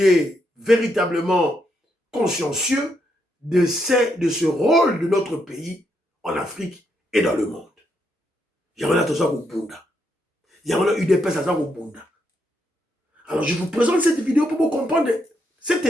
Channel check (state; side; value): normal; both; correlation 0.78